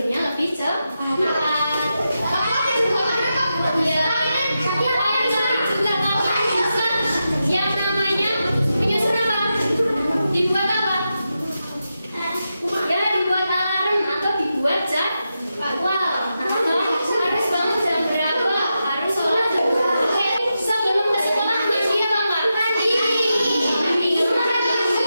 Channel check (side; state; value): both; inverted; correlation -0.88